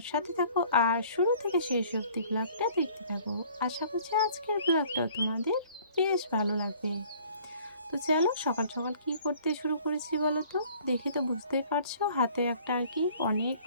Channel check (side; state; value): both; inverted; correlation -0.54